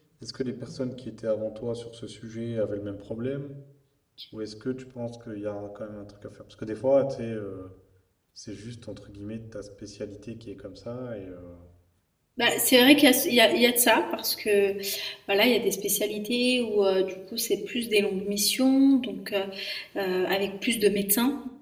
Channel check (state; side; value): identical; both; correlation 1.00